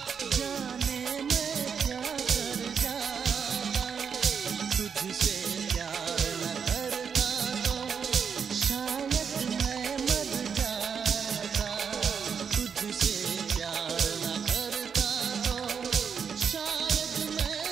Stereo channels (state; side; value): quieter; left; 6.7 dB